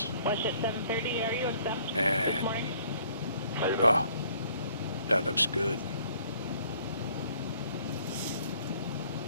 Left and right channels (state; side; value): inverted; both; correlation -0.60